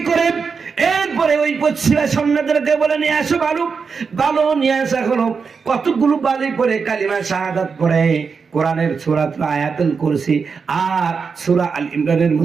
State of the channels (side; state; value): left; quieter; 5.4 dB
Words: করে এরপরে ওই পশ্চিমা সৈন্যদেরকে বলে, নিয়ে আসো বালু নিয়ে আসা হলো। কতগুলো বালি পরে কালিমা শাহাদাত পড়ে কোরআনের সূরা আয়াতুল কুরসি আর সূরা আল ইমরানের